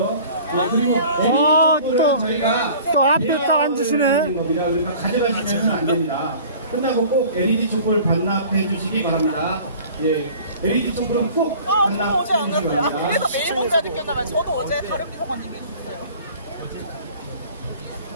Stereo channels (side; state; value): both; inverted; correlation -0.46